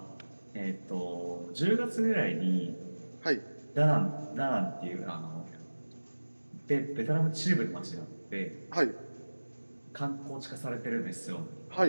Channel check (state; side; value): inverted; both; correlation -1.00